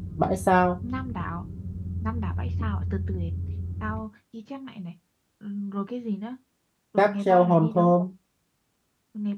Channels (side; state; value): both; identical; correlation 1.00